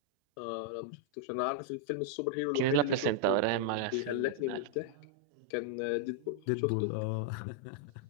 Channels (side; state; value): both; different; correlation -0.01